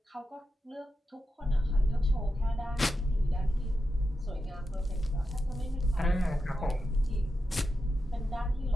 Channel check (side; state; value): both; normal; correlation 0.89